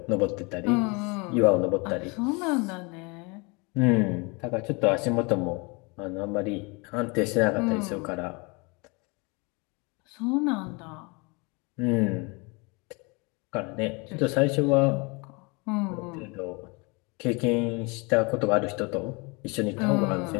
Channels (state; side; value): quieter; right; 29.1 dB